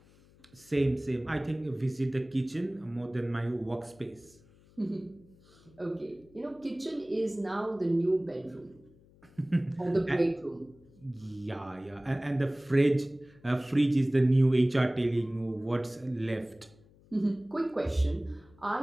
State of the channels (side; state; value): left; noise; hum, 27 dB below the sound